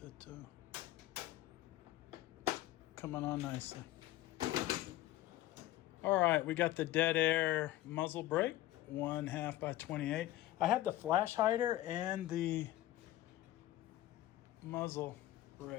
coming on nicely. All right, we got the Dead Air muzzle brake, 1/2 by 28. I had the flash hider and the muzzle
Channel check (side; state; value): right; quieter; 15.1 dB